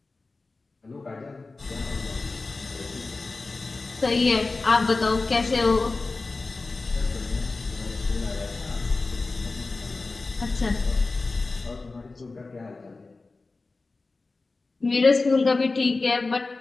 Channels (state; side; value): quieter; right; 3.6 dB